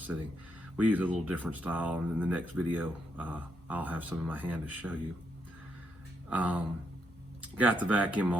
We use a little different style, and in the next video, I'll have some in my hand to show you. Got the vacuum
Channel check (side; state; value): both; normal; correlation 0.78